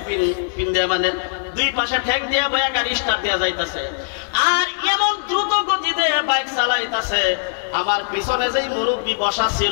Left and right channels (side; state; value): right; silent; digital silence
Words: পিন্দে মানে দুই পাশে ঠেক দিয়ে বয়া গাড়ি স্টার্ট দেওয়া যাইতেছে, আর এমন দ্রুত গতিতে বাইক চালাইতেছে। আমার পিছনে যেই মুরব্বী বসা